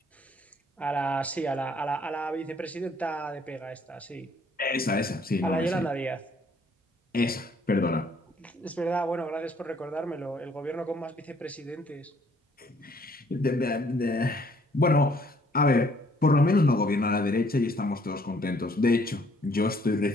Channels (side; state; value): both; normal; correlation 0.63